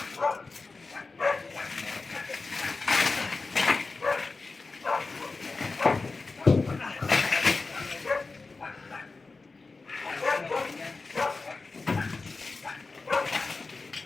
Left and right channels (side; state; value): right; quieter; 3.9 dB